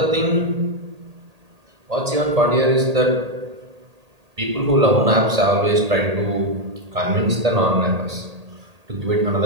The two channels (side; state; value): left; late; 1.8 ms